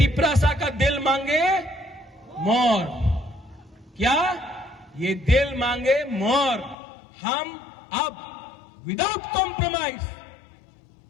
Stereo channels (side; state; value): right; drops out; at 6.8 s